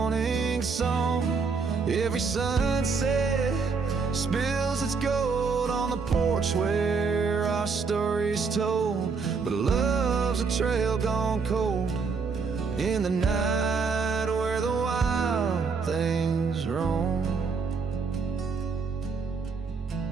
song. Every sunset spills its gold on the porch where our story's told, but love's a trail gone cold in the night where the wild things roam.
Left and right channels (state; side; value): quieter; left; 5.0 dB